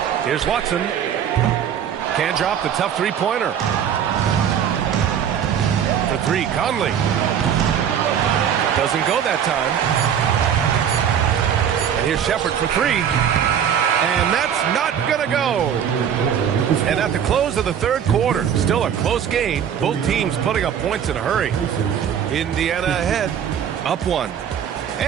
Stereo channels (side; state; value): left; quieter; 8.7 dB